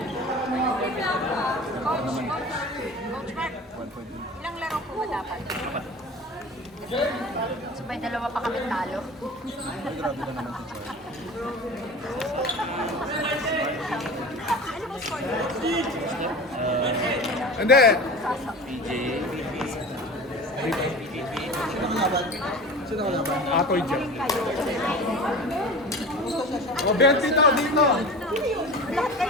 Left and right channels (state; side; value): normal; both; correlation 0.35